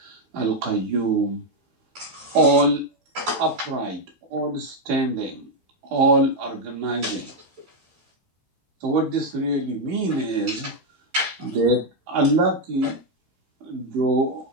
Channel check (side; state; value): left; late; 15 ms